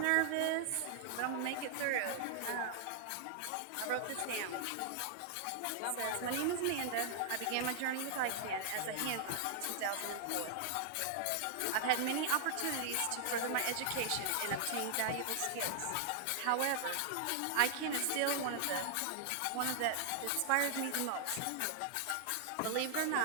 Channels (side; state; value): both; different; correlation 0.00